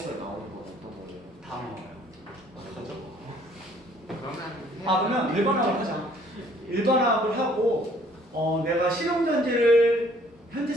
나오는 건 어떤 거예요? 다 나와요. 어떡하죠? 그러면 그러면 일반화학을 하자. 일반화학을 하고 내가 실용전지를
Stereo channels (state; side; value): normal; both; correlation 0.60